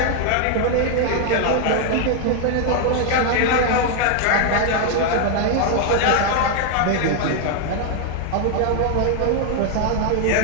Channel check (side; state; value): both; different; correlation 0.00